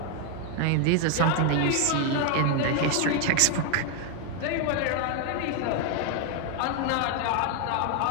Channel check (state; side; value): different; both; correlation 0.00